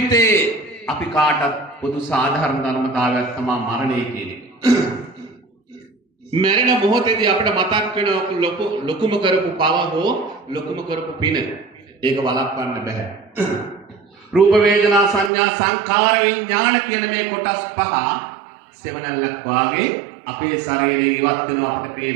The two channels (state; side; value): drops out; left; at 15.3 s